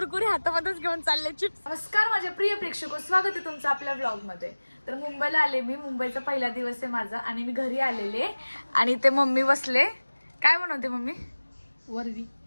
हातामध्येच घेऊन चालले चिप्स. नमस्कार माझे प्रिय प्रेक्षक, स्वागत आहे तुमचं आपल्या ब्लॉग मध्ये. तर मुंबईला आले मी. मुंबईचा पहिला दिवस आहे माझा आणि मी घरी आलेले आणि ते मम्मी बसले. काय बनवते मम्मी? वरवी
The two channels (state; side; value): inverted; both; correlation -1.00